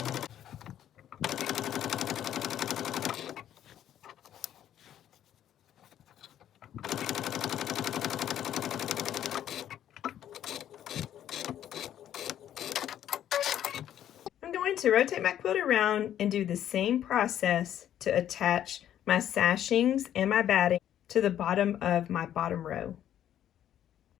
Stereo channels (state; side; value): quieter; right; 10.9 dB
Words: To rotate my quilt around and do the same process to attach my sashings and my batting to the bottom of my bottom row.